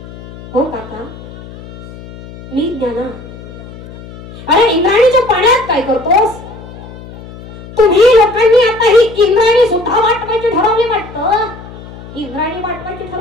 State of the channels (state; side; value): noise; left; hum, 16 dB below the sound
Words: हो काका, मी ज्ञाना. अरे इंद्राणीच्या पाण्यात काय करतोस? तुम्ही लोकांनी आता ही इंद्राणी सुद्धा वाटवायची ठरवली वाटतं. इंद्राणी वाटवायची